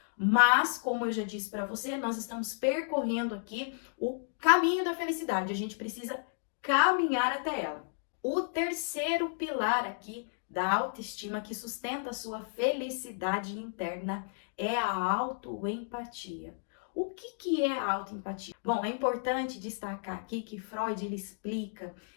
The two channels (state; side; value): silent; right; digital silence